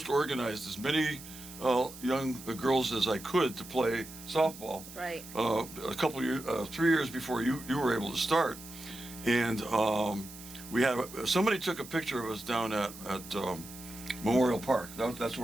organized as many young girls as I could to play softball. Right. A couple years, 3 years before you were able to start, and we had somebody took a picture of us down at Memorial Park. That's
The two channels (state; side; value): noise; right; hiss, 15 dB below the sound